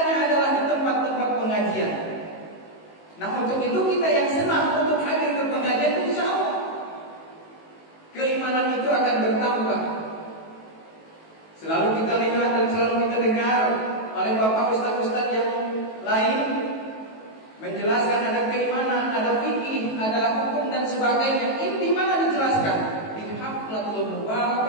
adalah di tempat-tempat pengajian. Nah untuk itu kita yang senang untuk hadir ke pengajian, insya Allah Selalu kita lihat dan selalu kita dengar oleh bapak ustaz-ustaz yang lain menjelaskan ada keimanan, ada fikih, ada hukum dan sebagainya. Ini di mana dijelaskan? Di Haflatul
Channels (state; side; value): late; right; 18 ms